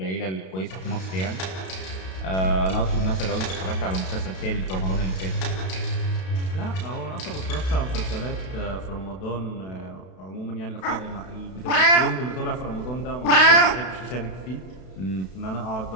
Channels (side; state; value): right; late; 32 ms